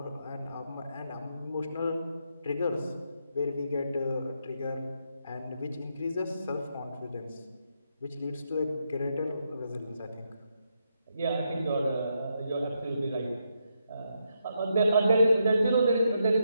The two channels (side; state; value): both; inverted; correlation -0.81